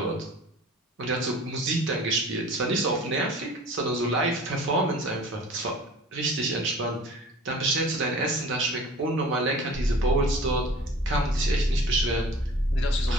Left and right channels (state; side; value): normal; both; correlation 0.44